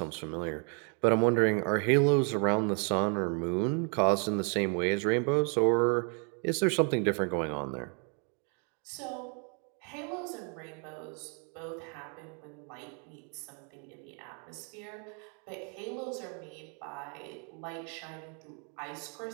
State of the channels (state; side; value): quieter; left; 38.1 dB